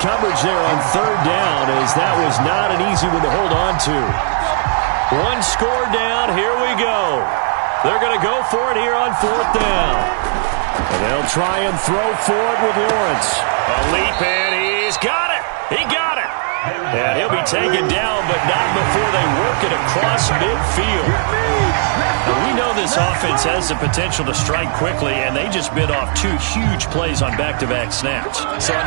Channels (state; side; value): silent; left; digital silence